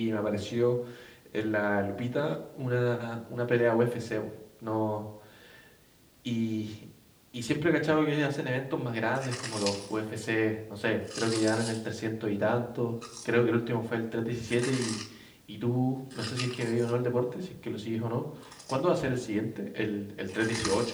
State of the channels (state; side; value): identical; both; correlation 1.00